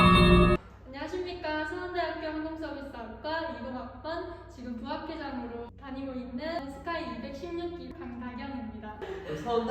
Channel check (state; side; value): identical; both; correlation 1.00